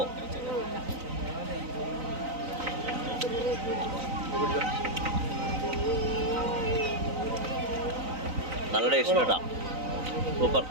നല്ല ടേസ്റ്റ് കേട്ടാ. സൂപ്പർ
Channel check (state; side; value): late; left; 3.9 ms